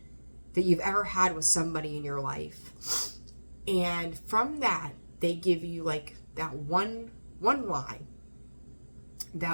that you've ever had with somebody in your life. And from that, they give you like that one line,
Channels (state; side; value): inverted; both; correlation -1.00